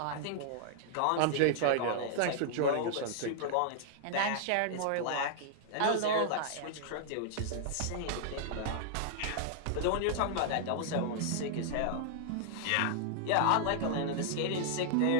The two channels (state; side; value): different; both; correlation -0.01